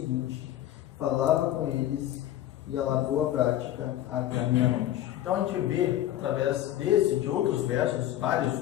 falava com eles e alargou a prática até a meia-noite. Então a gente vê, através desse e de outros versos, vários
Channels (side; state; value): right; quieter; 12.9 dB